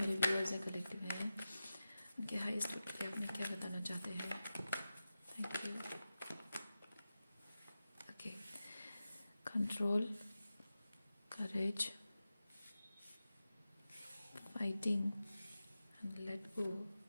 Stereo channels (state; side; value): inverted; both; correlation -0.93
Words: व्यूअर्स हैं, कलेक्टिव हैं, उनके हाईएस्ट गुड के लिए आप उन्हें क्या बताना चाहते हैं। Thank you. Okay, control, courage, fighting and let go,